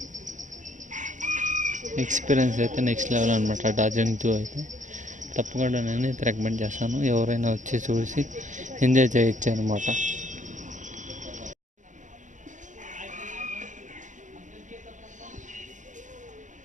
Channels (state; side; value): late; left; 0.36 ms